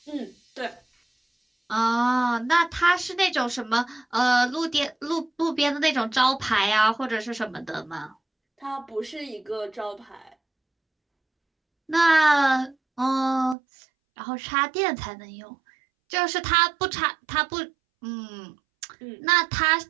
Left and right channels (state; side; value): drops out; left; at 13.6 s